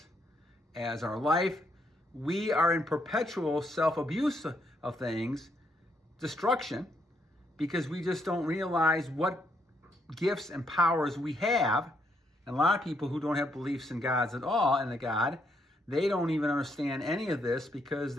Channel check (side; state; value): both; normal; correlation 0.74